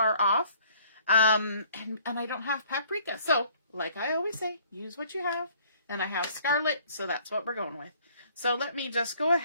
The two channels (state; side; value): inverted; both; correlation -0.58